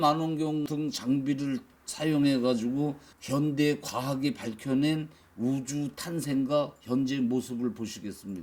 등 장비를 사용해 가지고 현대 과학이 밝혀낸 우주 탄생과 현재 모습을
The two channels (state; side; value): identical; both; correlation 1.00